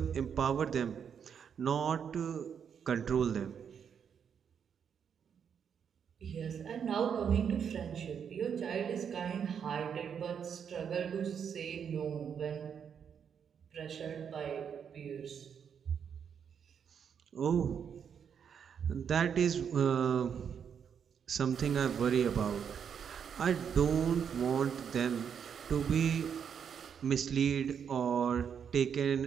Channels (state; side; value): quieter; left; 7.5 dB